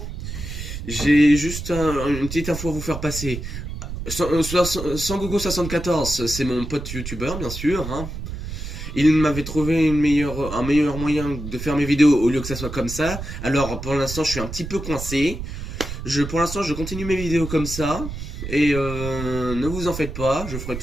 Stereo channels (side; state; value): right; noise; rumble, 8 dB below the sound